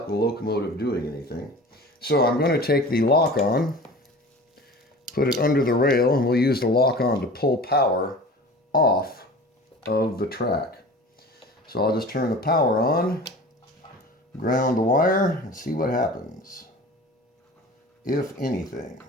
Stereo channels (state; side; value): normal; both; correlation 0.39